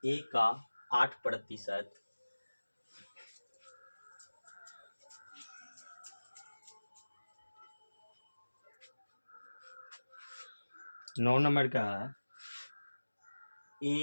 a का 8% 9 नंबर का है।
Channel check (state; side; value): inverted; both; correlation -1.00